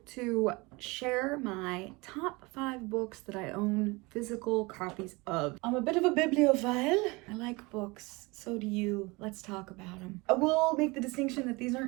to share my top 5 books that I own physical copies of. I'm a bit of a bibliophile. I like books, so do you. Let's talk about them. I will make the distinction that these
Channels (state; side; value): quieter; left; 25.1 dB